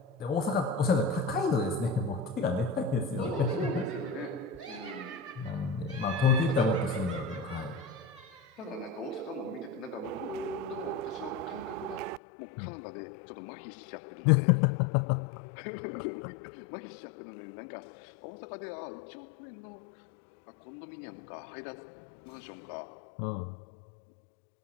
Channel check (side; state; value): right; drops out; at 12.2 s